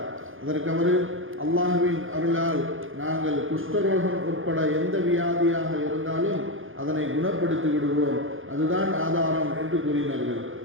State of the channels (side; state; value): left; late; 0.59 ms